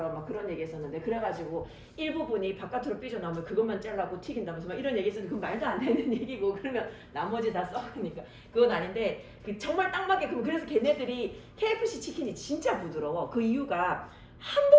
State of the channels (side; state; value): both; identical; correlation 1.00